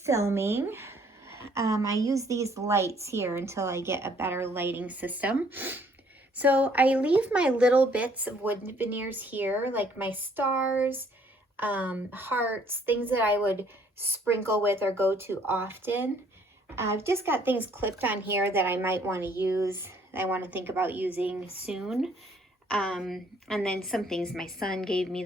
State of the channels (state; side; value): normal; both; correlation 0.63